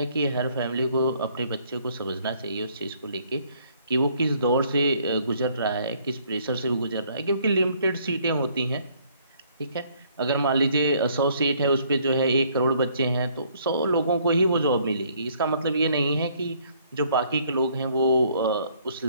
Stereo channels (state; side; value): inverted; both; correlation -0.64